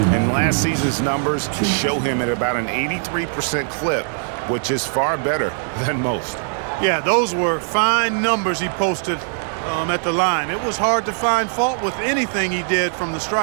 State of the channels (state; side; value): silent; left; digital silence